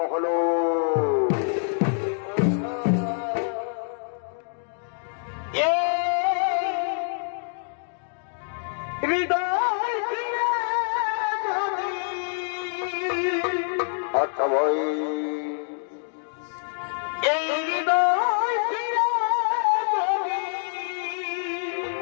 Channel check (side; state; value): right; silent; 61 dB below the other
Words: হলো। আচ্ছা ভাই, এই হৃদয়